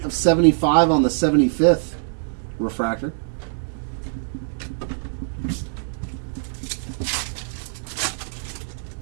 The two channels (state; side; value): silent; left; 63 dB below the other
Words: of 75 on the 75th refractor.